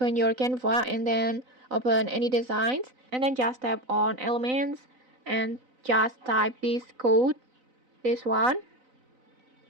your Canva and then open any designs, and then just tap on elements and just type this code, this one,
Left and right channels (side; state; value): left; late; 4.0 ms